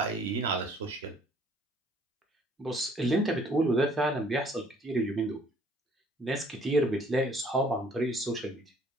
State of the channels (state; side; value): normal; both; correlation 0.59